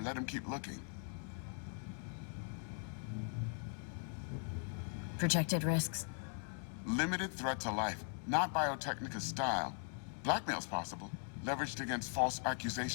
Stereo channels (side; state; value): right; silent; 51 dB below the other